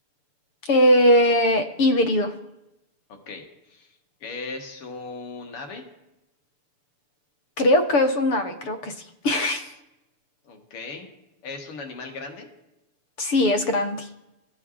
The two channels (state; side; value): late; right; 7.0 ms